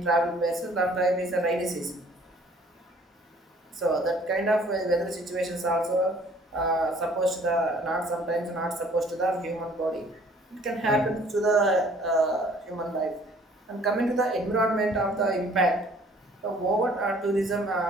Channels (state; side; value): normal; both; correlation 0.56